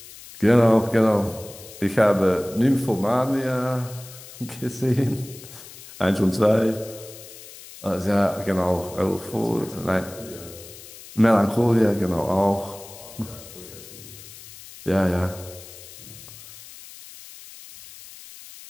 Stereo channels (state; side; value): noise; left; hiss, 17 dB below the sound